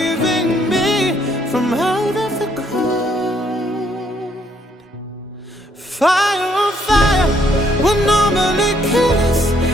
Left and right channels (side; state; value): both; normal; correlation 0.69